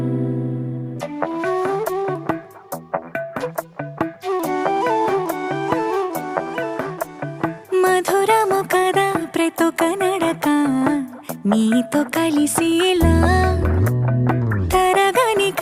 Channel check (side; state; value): both; identical; correlation 1.00